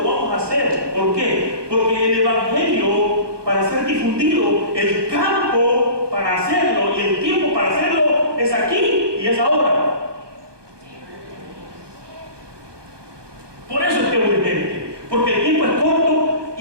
lo vamos a hacer. ¿Por qué? Porque el evangelio, para ser difundido, el campo para hacerlo y el tiempo para hacerlo es aquí y es ahora. Por eso es que es urgente, porque el tiempo es corto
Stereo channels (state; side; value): late; left; 1.2 ms